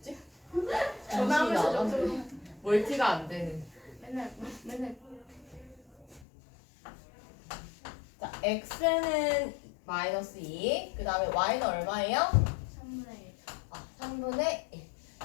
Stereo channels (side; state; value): right; drops out; at 6.2 s